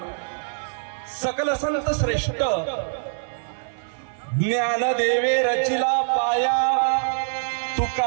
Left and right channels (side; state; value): left; silent; 62 dB below the other